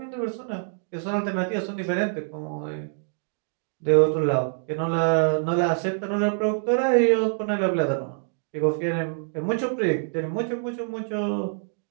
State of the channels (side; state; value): left; silent; digital silence